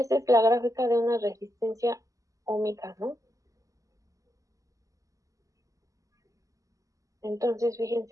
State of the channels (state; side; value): late; left; 0.16 ms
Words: la gráfica de una resistencia óhmica, ¿no? Entonces,